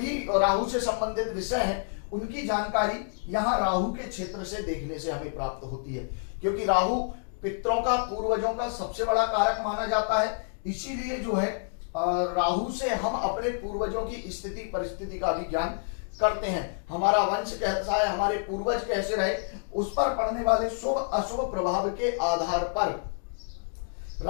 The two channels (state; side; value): silent; right; digital silence